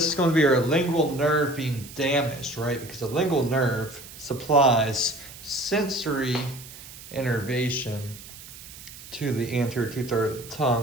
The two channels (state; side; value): noise; right; hiss, 16 dB below the sound